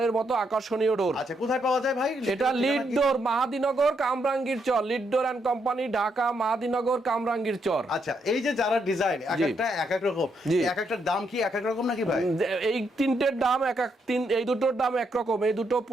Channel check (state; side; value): normal; both; correlation 0.78